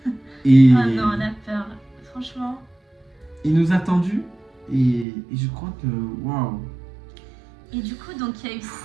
Et Oh non, la peur. Franchement. il nous a attendus et je crois que, waouh, Et du coup, donc il y a eu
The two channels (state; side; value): drops out; left; at 5.1 s